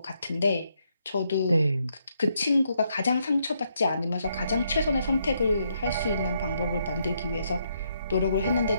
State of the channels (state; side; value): inverted; both; correlation -0.76